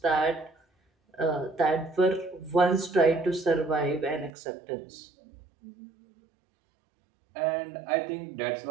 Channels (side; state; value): left; drops out; at 4.3 s